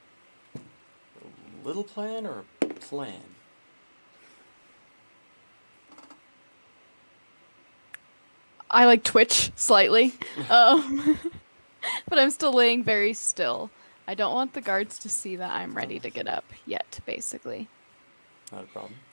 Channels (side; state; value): both; inverted; correlation -1.00